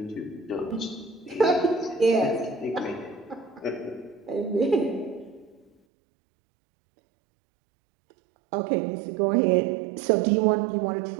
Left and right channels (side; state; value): left; drops out; at 5.7 s